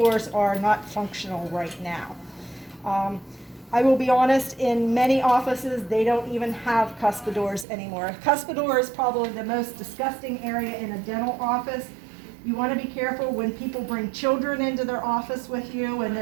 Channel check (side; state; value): left; drops out; at 7.7 s